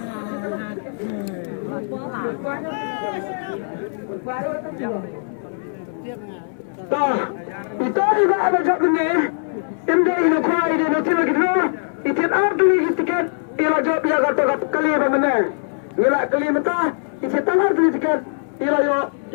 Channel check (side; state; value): right; silent; digital silence